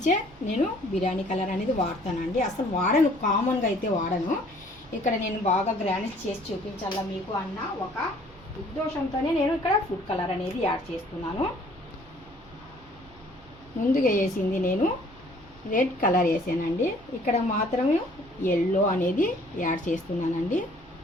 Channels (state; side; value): noise; right; hum, 25 dB below the sound